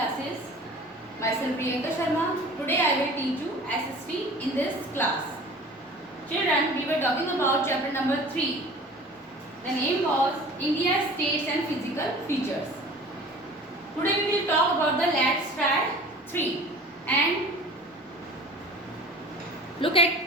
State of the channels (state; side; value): normal; both; correlation 0.43